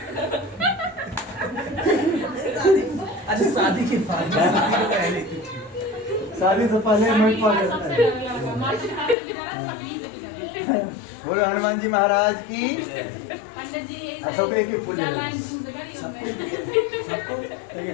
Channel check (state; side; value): drops out; right; at 9.2 s